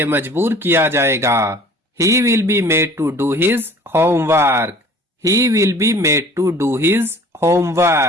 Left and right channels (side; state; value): both; normal; correlation 0.48